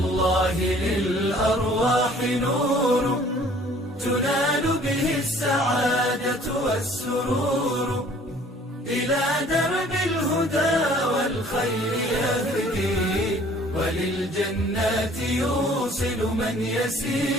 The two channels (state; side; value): normal; both; correlation 0.54